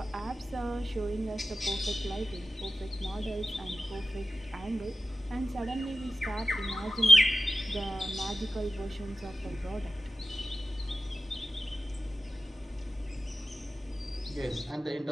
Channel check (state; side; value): normal; both; correlation 0.93